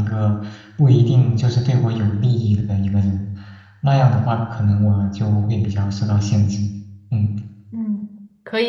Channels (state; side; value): identical; both; correlation 1.00